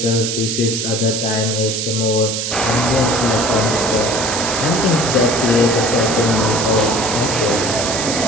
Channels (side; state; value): right; noise; hiss, 2 dB below the sound